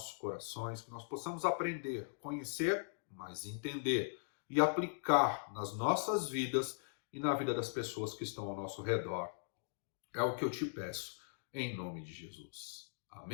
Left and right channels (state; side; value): silent; right; digital silence